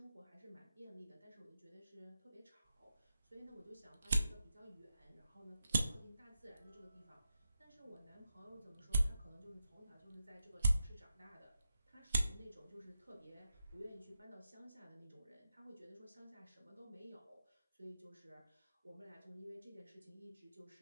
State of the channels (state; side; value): inverted; both; correlation -0.88